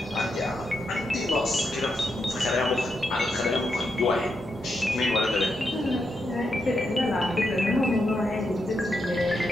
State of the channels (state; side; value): normal; both; correlation 0.83